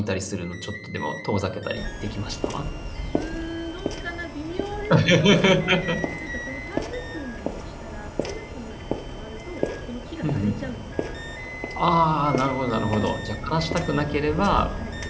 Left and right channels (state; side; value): identical; both; correlation 1.00